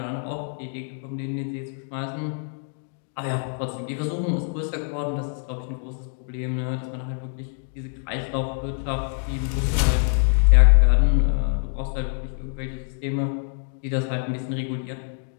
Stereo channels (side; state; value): right; silent; 62 dB below the other